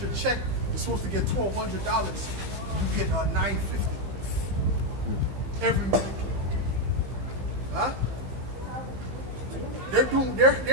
your check, you're supposed to get $1,200, you get $950 every week. Huh?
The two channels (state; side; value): late; left; 15 ms